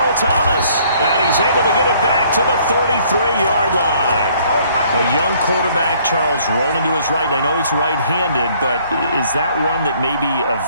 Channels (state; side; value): inverted; both; correlation -0.61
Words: Thomas. And he's able to get it back to the 33-yard line. A young quarterback, Charles, rolling to his right. And I know he's right-handed, but is that one that maybe a